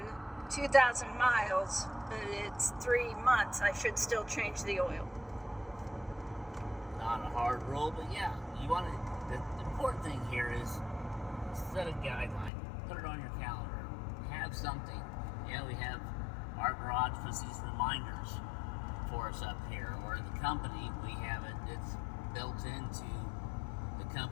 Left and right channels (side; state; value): right; drops out; at 12.5 s